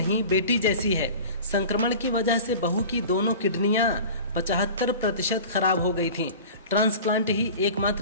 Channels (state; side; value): inverted; both; correlation -0.38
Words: बेटी जैसी है। संक्रमण की वजह से बहू की दोनों किडनियां 75% खराब हो गई थीं। ट्रांसप्लांट ही